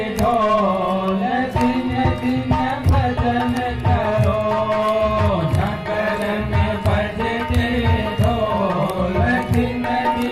ढोल दिन दिन भजन करो। नगर में बजते ढोल दिन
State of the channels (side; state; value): both; identical; correlation 1.00